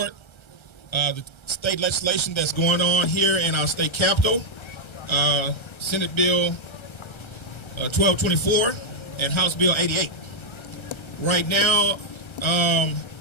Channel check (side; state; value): right; late; 1.3 ms